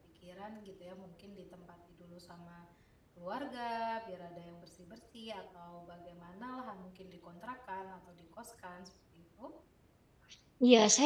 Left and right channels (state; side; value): identical; both; correlation 1.00